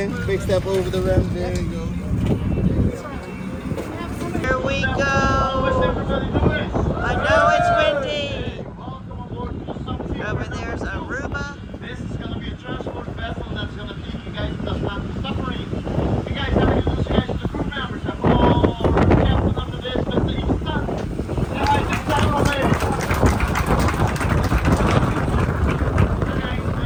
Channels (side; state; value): both; identical; correlation 1.00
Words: Big step over the rim. There you go. Here we go. I know it's windy. Over there's Aruba. This is going to be a transport vessel that's going to take you guys to the Atlantis Submarine. You guys have to introduce you guys to the crew members. I'm all captain under this, Mr. Easton. Yeah, I think that's all right.